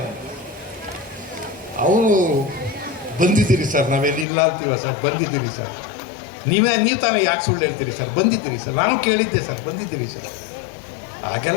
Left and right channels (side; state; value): right; drops out; at 4.2 s